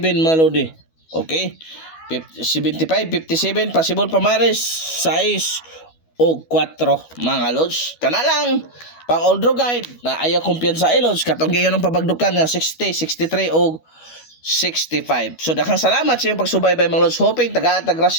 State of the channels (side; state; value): right; late; 12 ms